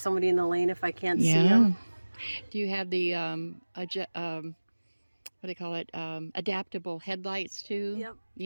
somebody in the lane if I can't see Yeah. them. Do you have the what do you call it? Adaptable headlights too? Yep.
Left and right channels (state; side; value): inverted; both; correlation -1.00